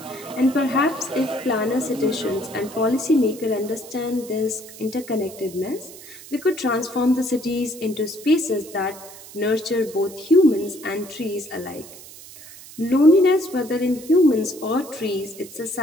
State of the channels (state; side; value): noise; right; hiss, 17 dB below the sound